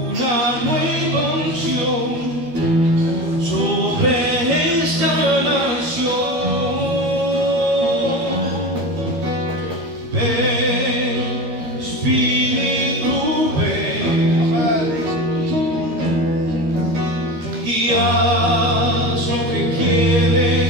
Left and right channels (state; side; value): late; left; 13 ms